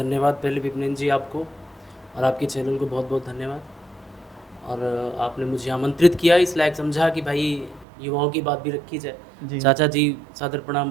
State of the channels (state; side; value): drops out; left; at 7.9 s